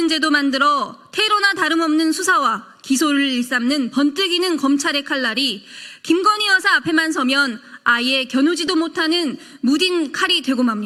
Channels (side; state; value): both; identical; correlation 1.00